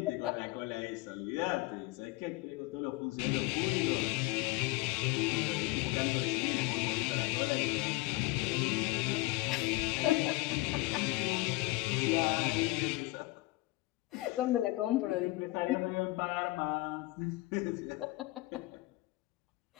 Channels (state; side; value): quieter; right; 20.9 dB